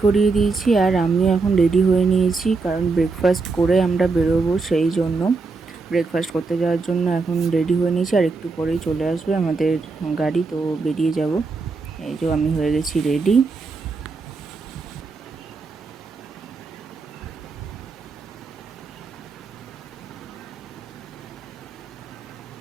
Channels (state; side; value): quieter; left; 4.1 dB